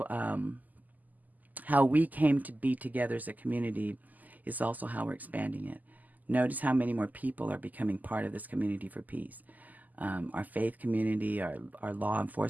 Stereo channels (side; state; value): left; late; 0.081 ms